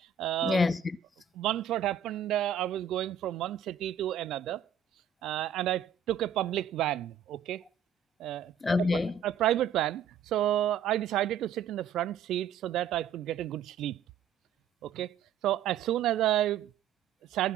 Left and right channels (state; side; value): quieter; left; 7.1 dB